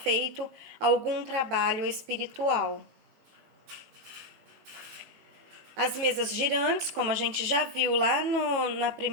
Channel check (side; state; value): left; late; 18 ms